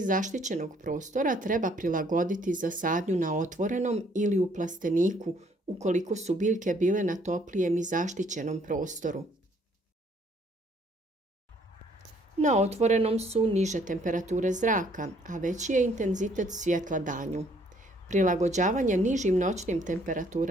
zaštićenog prostora treba prilagoditi za sadnju na otvorenom ili u plasteniku ukoliko su biljke bile na toplijem i zaštićenom prostoru. Na otvorenom su niže temperature zraka, a veći je intenzitet svjetla danju. Prilagođavanje nižim noćnim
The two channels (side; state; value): both; normal; correlation 0.64